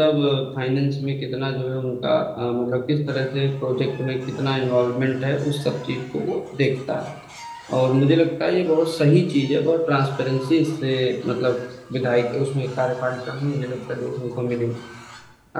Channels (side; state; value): both; identical; correlation 1.00